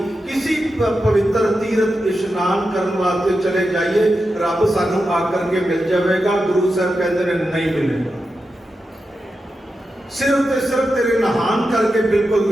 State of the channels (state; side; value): normal; both; correlation 0.89